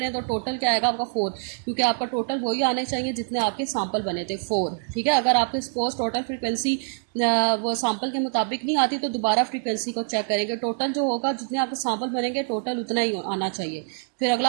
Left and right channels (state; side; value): silent; left; 62 dB below the other